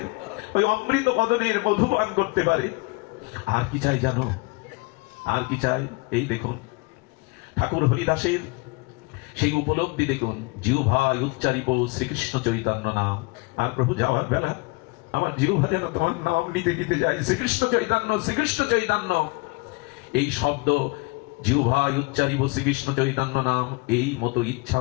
ওই অমৃত বদনের মধুপান করতে পারে। আর কি চাই জানো? আর কি চাই? এই দেখুন ঠাকুর হরিদাসের সেই উপলব্ধি দেখুন, জিহ্বায় উচ্চারিব শ্রীকৃষ্ণ চৈতন্য নাম। আর প্রভু যাওয়ার বেলা আমার জিহ্বা যেন তোমার নাম নিতে নিতে যায়, শ্রীকৃষ্ণ চৈতন্য, শ্রীকৃষ্ণ চৈতন্য। এই শব্দ জিহ্বায় উচ্চারিব শ্রীকৃষ্ণ চৈতন্য নাম, এই মতো ইচ্ছা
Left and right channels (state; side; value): quieter; right; 27.1 dB